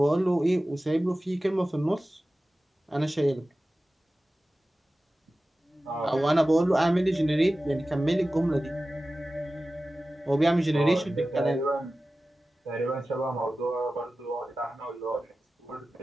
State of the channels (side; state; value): both; normal; correlation 0.95